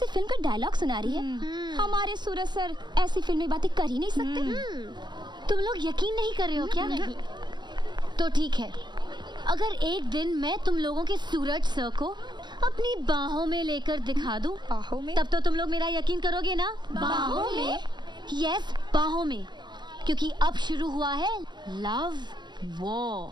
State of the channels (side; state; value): left; late; 0.22 ms